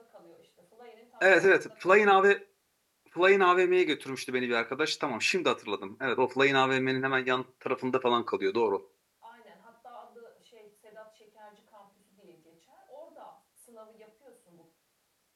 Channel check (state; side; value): identical; both; correlation 1.00